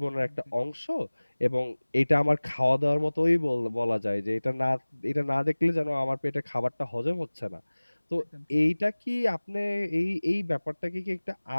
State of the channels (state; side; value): inverted; both; correlation -1.00